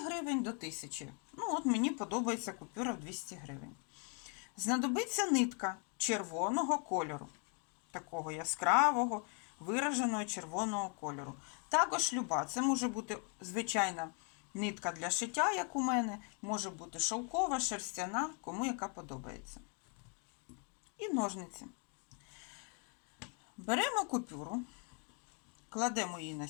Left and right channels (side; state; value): right; quieter; 38.8 dB